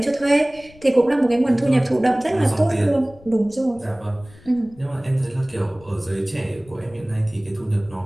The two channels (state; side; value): noise; left; rumble, 23 dB below the sound